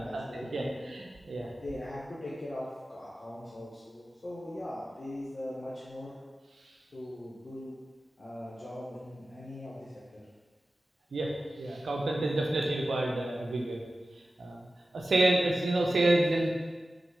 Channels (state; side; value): normal; both; correlation 0.95